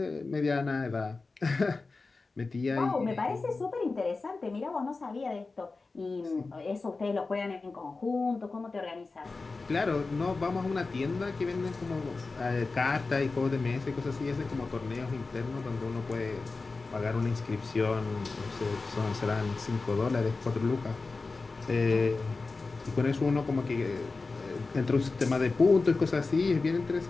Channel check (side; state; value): right; quieter; 3.8 dB